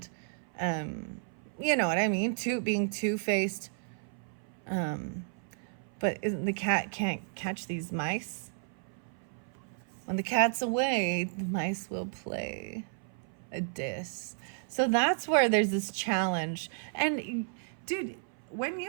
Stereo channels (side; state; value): left; silent; 56 dB below the other